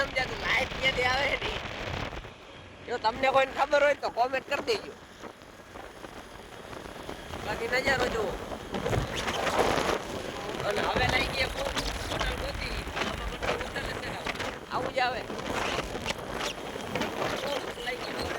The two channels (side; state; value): both; identical; correlation 1.00